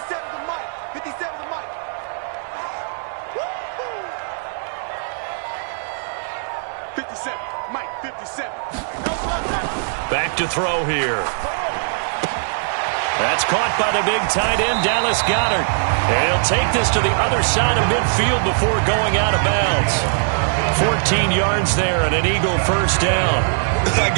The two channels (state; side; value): silent; left; 62 dB below the other